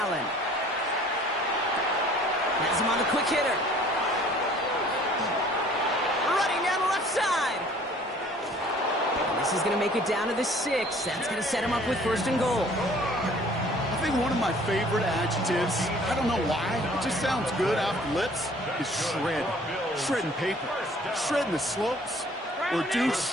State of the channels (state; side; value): normal; both; correlation 0.53